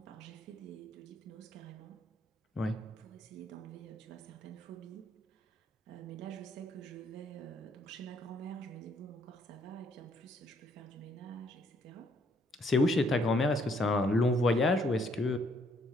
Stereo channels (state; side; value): normal; both; correlation 0.67